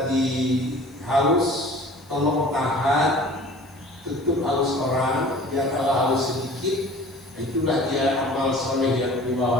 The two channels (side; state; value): left; noise; hiss, 30 dB below the sound